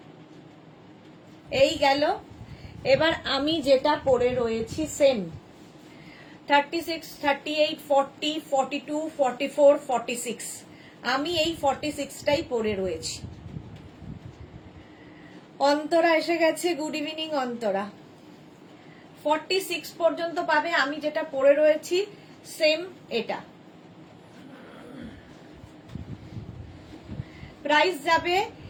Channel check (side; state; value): both; identical; correlation 1.00